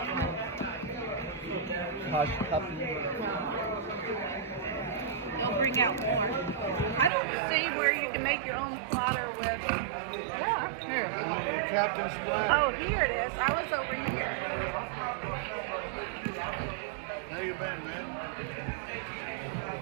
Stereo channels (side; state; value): left; drops out; at 7.1 s